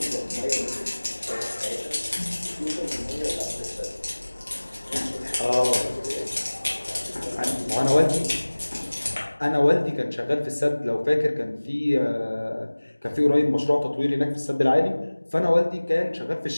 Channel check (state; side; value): inverted; both; correlation -1.00